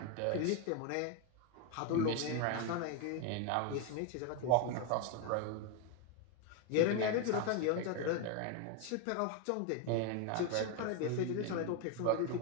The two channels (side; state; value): both; different; correlation 0.01